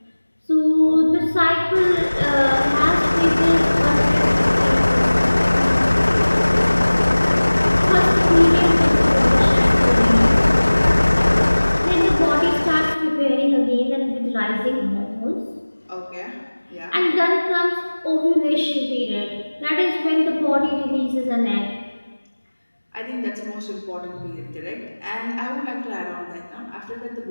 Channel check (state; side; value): inverted; both; correlation -1.00